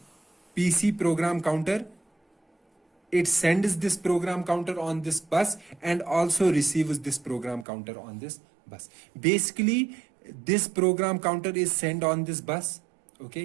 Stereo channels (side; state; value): left; drops out; at 7.7 s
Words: PC program counter, it sends this program counter on this bus and also receives this program counter on this bus. Basically, this program counter is sent on this bus.